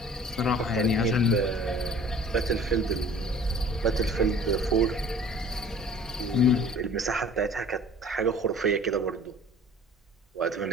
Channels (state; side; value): normal; both; correlation 0.48